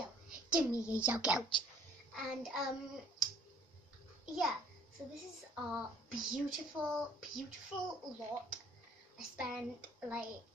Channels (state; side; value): normal; both; correlation 0.57